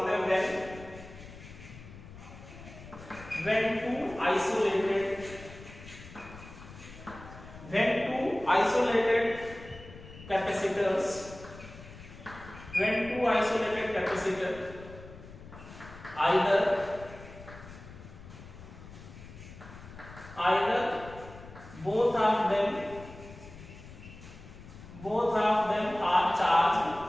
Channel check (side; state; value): left; noise; rumble, 16 dB below the sound